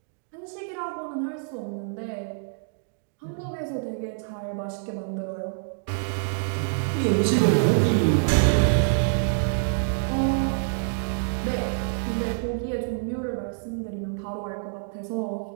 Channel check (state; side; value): silent; left; digital silence